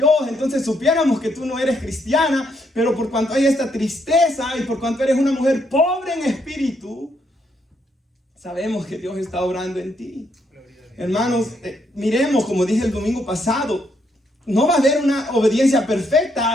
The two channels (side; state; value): both; normal; correlation 0.75